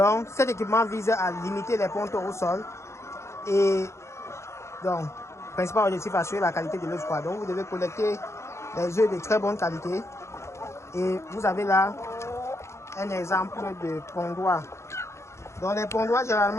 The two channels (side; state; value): right; late; 0.13 ms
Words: cet équipement vise à limiter les pontes au sol et donc principal objectif assurer la qualité de l'œuf. Donc vous devez collecter les œufs de très bonne qualité. Et vous avez là un exemple de pondoir. Donc les pondoirs